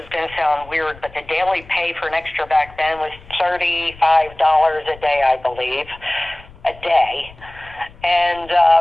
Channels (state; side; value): noise; left; rumble, 21 dB below the sound